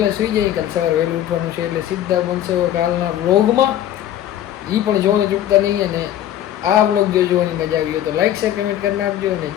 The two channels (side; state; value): right; quieter; 11.8 dB